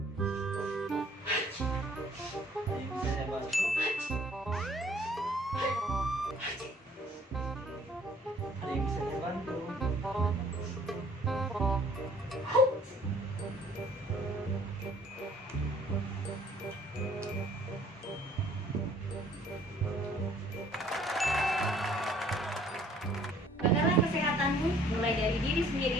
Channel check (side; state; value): both; normal; correlation 0.58